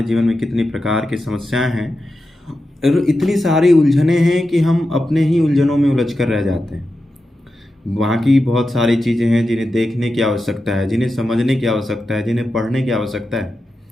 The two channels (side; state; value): both; normal; correlation 0.90